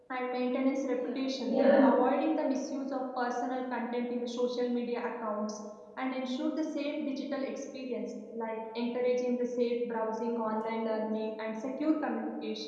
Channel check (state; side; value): identical; both; correlation 1.00